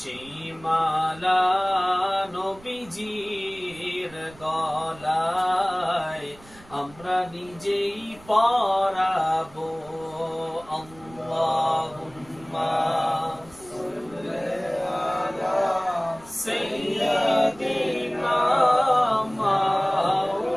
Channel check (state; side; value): noise; right; rumble, 23 dB below the sound